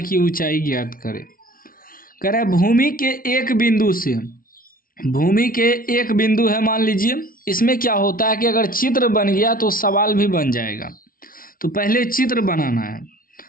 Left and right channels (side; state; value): right; late; 0.42 ms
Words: की ऊंचाई ज्ञात करें। करा भूमि के एक बिंदु से, भूमि के एक बिंदु है मान लीजिए। इसमें क्या होता है कि अगर चित्र बन गया तो सवाल भी बन जाएगा। तो पहले चित्र बनाना है।